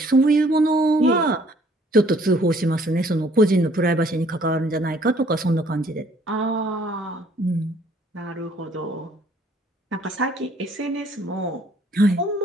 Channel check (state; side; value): normal; both; correlation 0.61